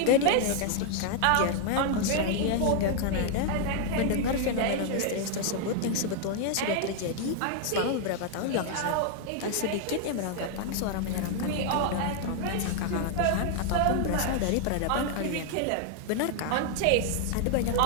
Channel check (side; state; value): both; different; correlation 0.00